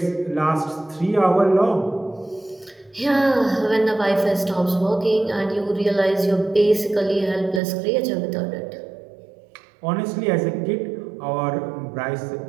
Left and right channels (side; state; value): left; drops out; at 7.6 s